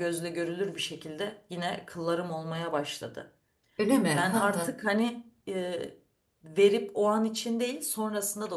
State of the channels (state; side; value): identical; both; correlation 1.00